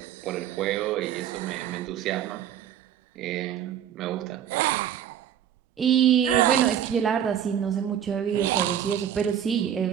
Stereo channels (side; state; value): left; quieter; 9.8 dB